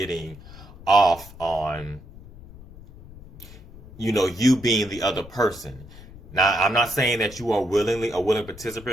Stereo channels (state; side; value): noise; left; rumble, 18 dB below the sound